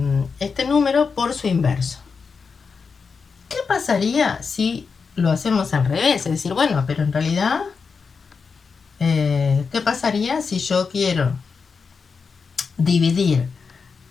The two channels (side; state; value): right; quieter; 5.3 dB